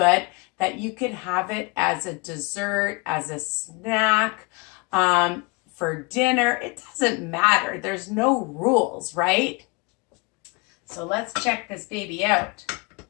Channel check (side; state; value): right; quieter; 28.5 dB